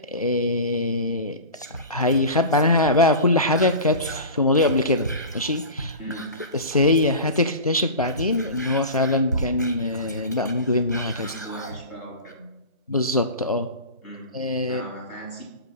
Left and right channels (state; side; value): inverted; both; correlation -0.32